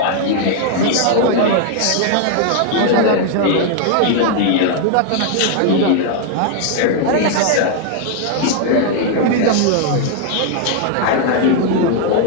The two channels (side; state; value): both; different; correlation 0.00